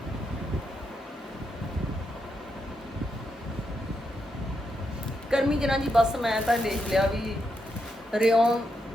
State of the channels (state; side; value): normal; both; correlation 0.83